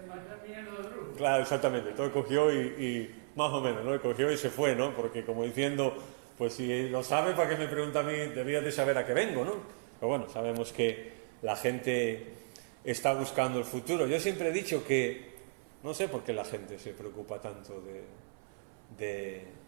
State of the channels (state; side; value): silent; left; 55 dB below the other